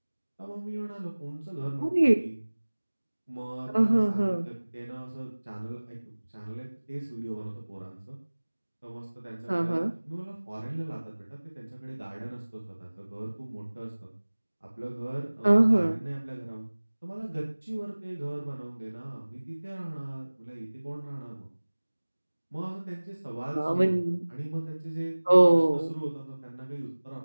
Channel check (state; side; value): inverted; both; correlation -1.00